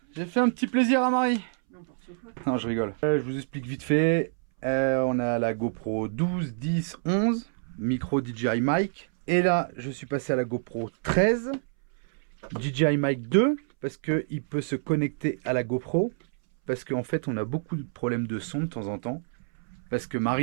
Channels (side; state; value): left; silent; 60 dB below the other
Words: j'ai fait un petit plaisir à Marie. Non, je rigole. Je vous explique vite fait. On a la GoPro 12, 10, 11, micro DJI mic. Et là, je suis passé à la GoPro 13, DJI mic 2, parce qu'il peut se connecter à la GoPro. Parce qu'en fait, on a beaucoup de problèmes de son de temps en temps. Parce que